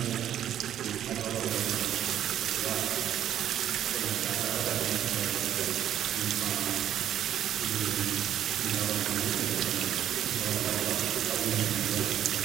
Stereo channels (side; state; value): left; quieter; 10.8 dB